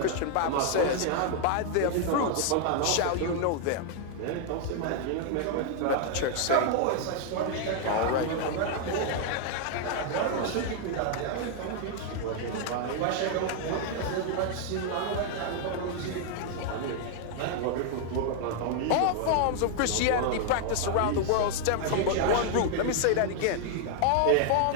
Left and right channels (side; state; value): both; different; correlation 0.00